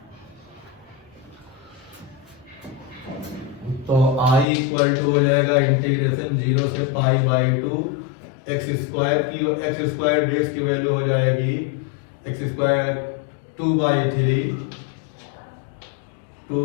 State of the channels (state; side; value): drops out; right; at 4.5 s